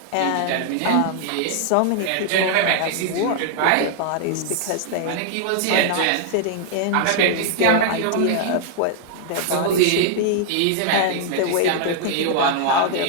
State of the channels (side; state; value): both; different; correlation 0.00